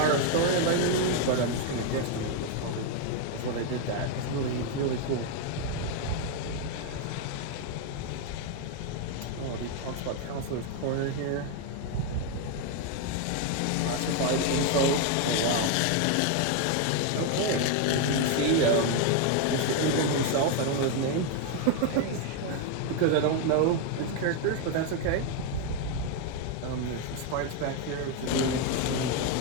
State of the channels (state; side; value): different; both; correlation 0.01